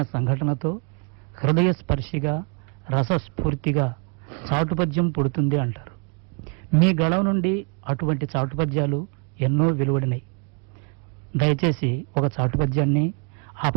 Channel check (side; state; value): left; quieter; 36.8 dB